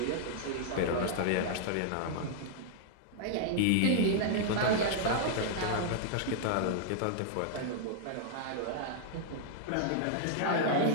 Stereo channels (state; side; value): different; both; correlation -0.01